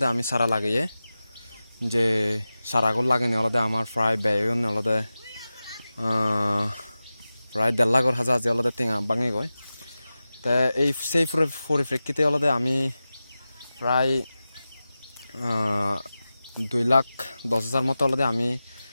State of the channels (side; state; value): both; inverted; correlation -0.95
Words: আমি সারা লাগিয়ে যে সারাগুলো লাগেনি আলাদা আমার প্রায় ব্যয় আলাদা প্রায় 1.5 লাখ হাজার যে আলাদা টেঙা ভাঙে গয় তা এই সেই পরিপ্রেক্ষিতে আলাদা আমি প্রায় 2,10,000 মতো আলাদা আমি